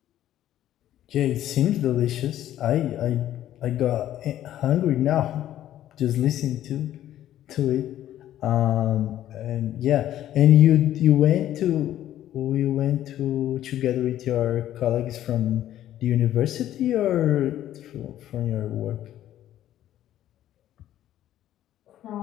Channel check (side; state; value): right; quieter; 12.4 dB